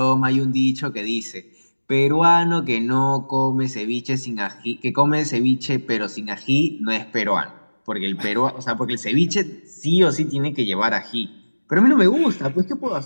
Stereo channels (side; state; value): both; inverted; correlation -1.00